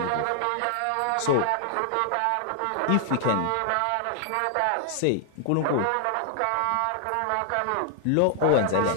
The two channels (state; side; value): different; both; correlation 0.00